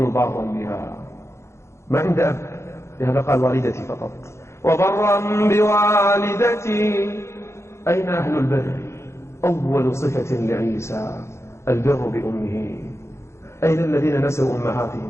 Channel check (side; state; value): right; late; 0.13 ms